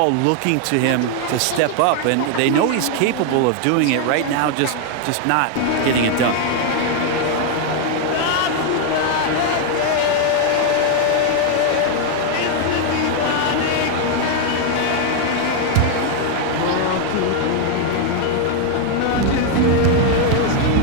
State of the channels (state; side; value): different; both; correlation 0.00